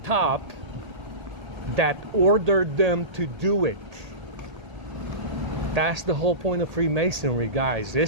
that ordered them to do it. That's the whole point of Freemasonry, guys.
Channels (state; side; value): late; left; 1.8 ms